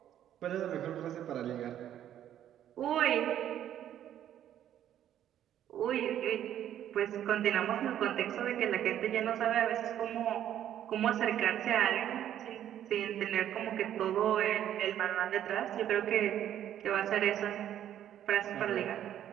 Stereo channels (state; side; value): quieter; left; 11.0 dB